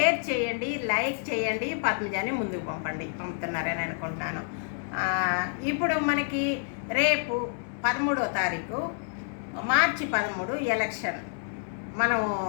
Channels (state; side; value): silent; right; 59 dB below the other